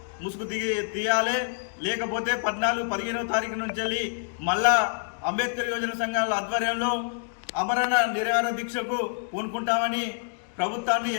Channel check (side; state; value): right; silent; digital silence